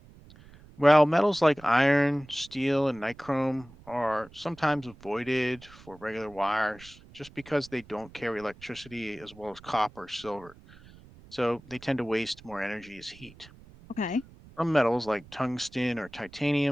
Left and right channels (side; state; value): right; noise; rumble, 22 dB below the sound